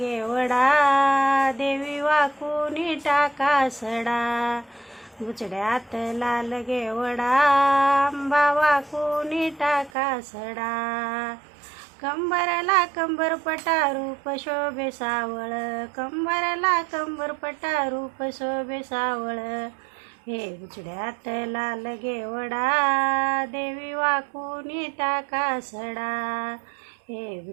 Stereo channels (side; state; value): left; drops out; at 9.9 s